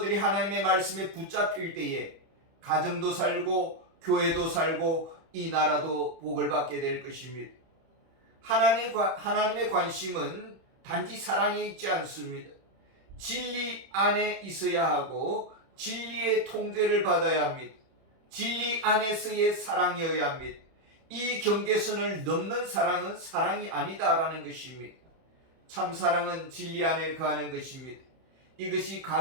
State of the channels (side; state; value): left; late; 31 ms